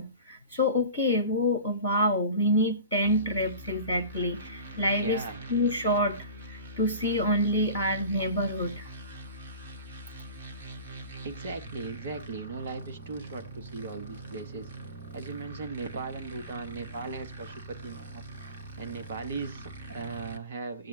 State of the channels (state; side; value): inverted; both; correlation -0.37